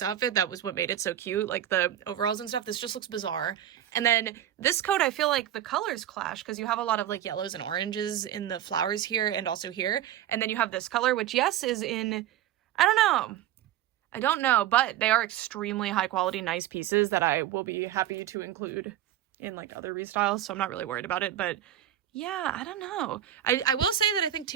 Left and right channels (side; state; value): left; quieter; 11.7 dB